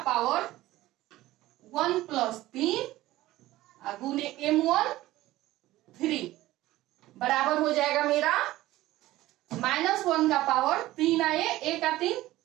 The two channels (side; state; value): left; quieter; 16.6 dB